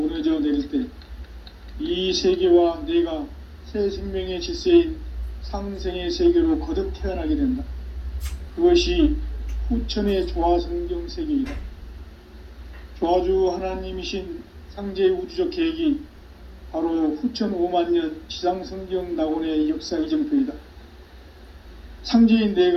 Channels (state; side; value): identical; both; correlation 1.00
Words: 내릴 때 이 세계와 내가 새 생명의 질서인 상생의 세계로 거듭 태어나게 된다. 그것이 후천의 조화성경 세계이다. 조화주 하나님이신 상제의 우주적 계획이 바로 후천 5만년 지상성경 낙원의 역사 이정표이다. 상제인